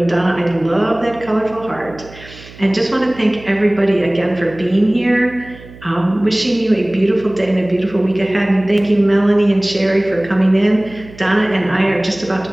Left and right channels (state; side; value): noise; right; hum, 19 dB below the sound